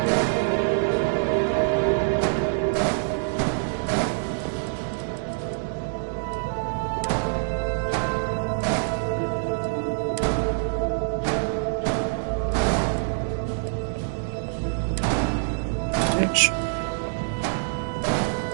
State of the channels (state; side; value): silent; left; digital silence